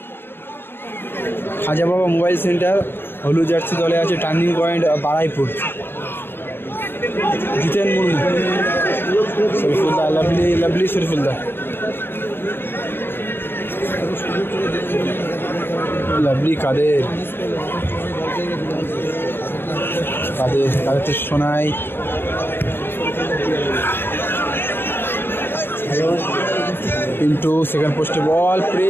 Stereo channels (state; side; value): late; right; 0.10 ms